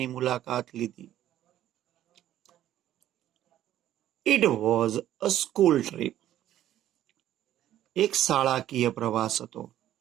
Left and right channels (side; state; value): left; quieter; 12.4 dB